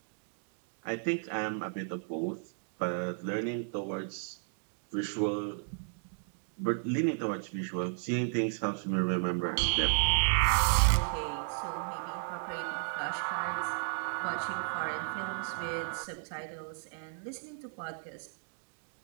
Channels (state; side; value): silent; left; digital silence